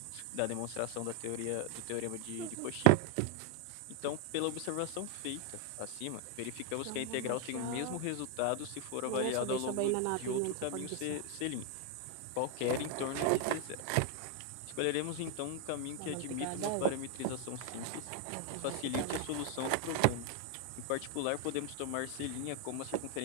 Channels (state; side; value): different; both; correlation 0.01